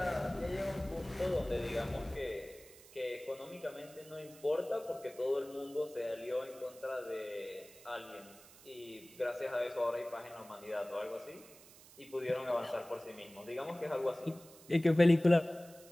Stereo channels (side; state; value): right; noise; hiss, 21 dB below the sound